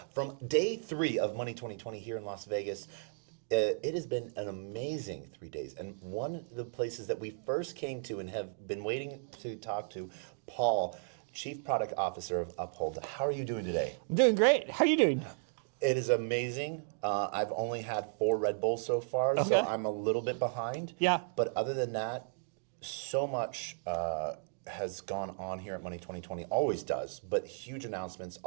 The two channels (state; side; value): silent; left; digital silence